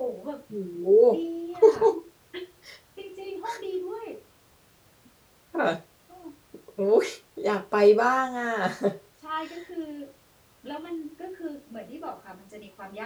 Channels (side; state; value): both; identical; correlation 1.00